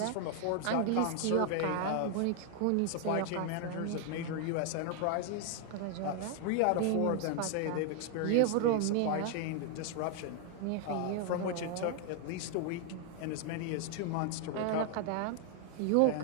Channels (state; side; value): different; both; correlation 0.00